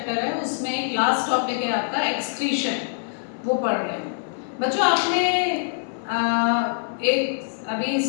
है उसमें एक लास्ट टॉपिक है आपका एक्सक्रीशन, वो पढ़ रहे हैं। बच्चों आपने एक अभी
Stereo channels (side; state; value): right; silent; 62 dB below the other